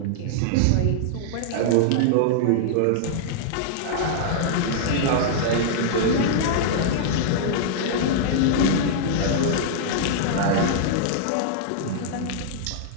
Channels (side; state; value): both; different; correlation -0.01